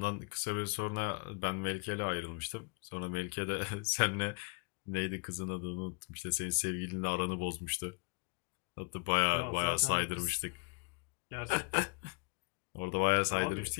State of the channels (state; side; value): quieter; right; 35.5 dB